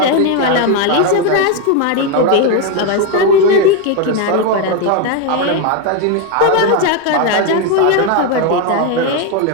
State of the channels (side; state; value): both; different; correlation 0.02